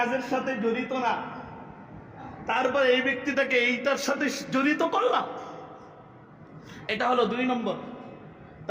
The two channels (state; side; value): identical; both; correlation 1.00